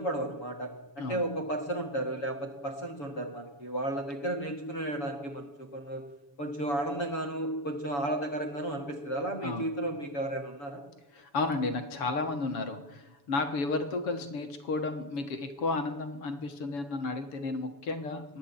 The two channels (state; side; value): late; right; 7.1 ms